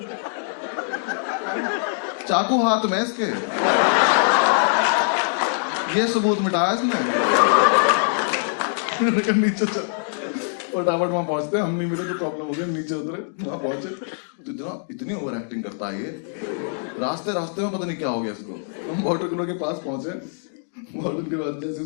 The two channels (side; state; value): right; silent; digital silence